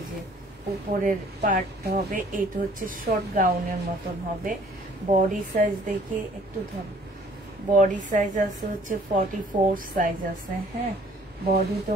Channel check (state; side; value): normal; both; correlation 0.56